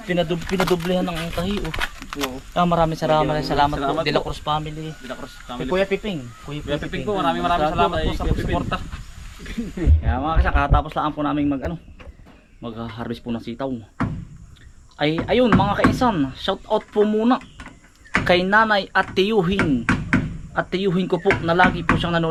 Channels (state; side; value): identical; both; correlation 1.00